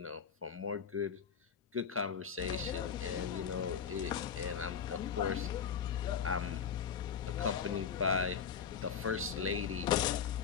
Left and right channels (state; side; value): quieter; right; 7.2 dB